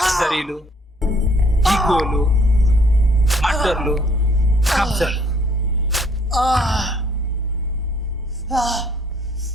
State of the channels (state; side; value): normal; both; correlation 0.63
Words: ఈగోలు, మర్డర్లు, కబ్జాలు?